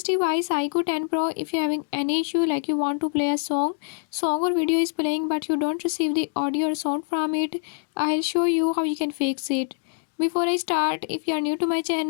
device IQOO 10 Pro, if you're having any issue like you want to play a song or video is playing but you don't receive the audio or sound from it, I'll show you how you can fix it. Before I start, if you are new to my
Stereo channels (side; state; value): right; silent; 60 dB below the other